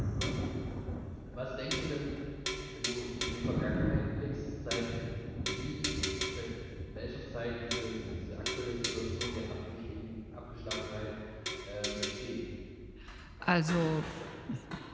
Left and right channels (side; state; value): both; identical; correlation 1.00